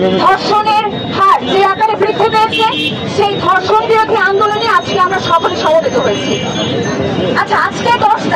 ধর্ষণের হার যে আকারে বৃদ্ধি পেয়েছে, সেই ধর্ষণ বিরোধী আন্দোলনে আজকে আমরা সকলে সমবেত হয়েছি। আচ্ছা, আজকে 10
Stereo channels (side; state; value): both; identical; correlation 1.00